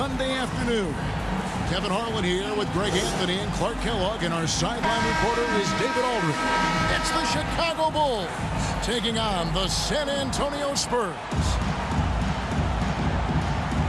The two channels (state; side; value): identical; both; correlation 1.00